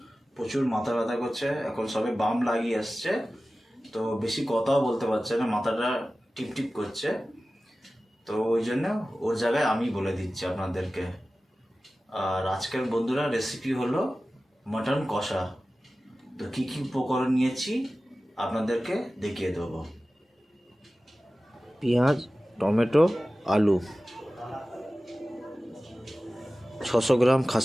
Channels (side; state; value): both; normal; correlation 0.96